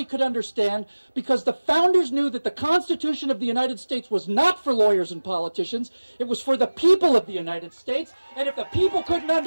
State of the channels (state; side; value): inverted; both; correlation -1.00